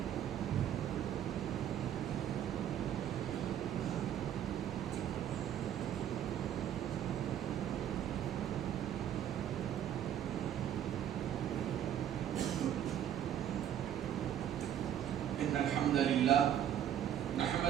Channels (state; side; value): quieter; left; 10.1 dB